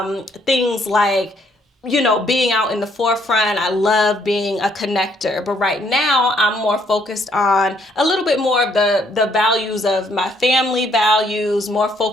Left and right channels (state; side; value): normal; both; correlation 0.68